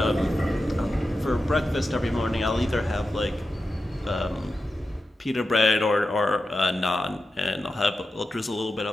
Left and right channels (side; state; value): both; normal; correlation 0.91